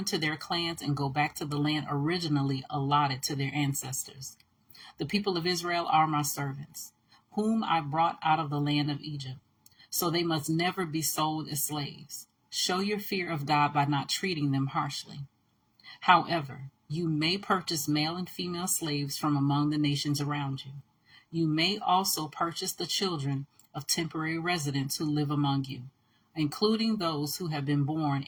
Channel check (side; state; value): both; identical; correlation 1.00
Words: to their clans and go back to the land originally allotted to their ancestors. The people of Israel are my servants, whom I brought out of the land of Egypt, so they must never be sold as slaves. Show your fear of God by not treating them harshly. However, you may purchase male and female slaves from among the nations around you. You may also purchase the children of temporary residents who live among you, including those who have been born